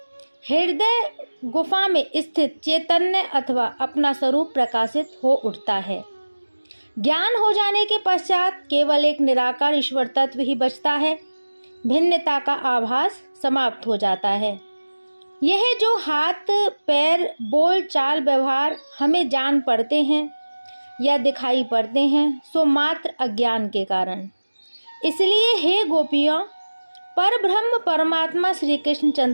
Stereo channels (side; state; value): both; inverted; correlation -1.00